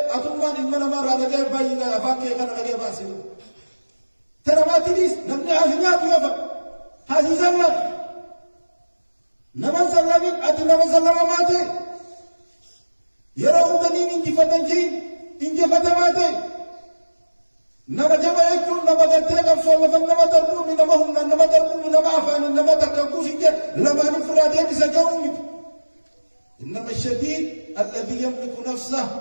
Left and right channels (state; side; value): inverted; both; correlation -1.00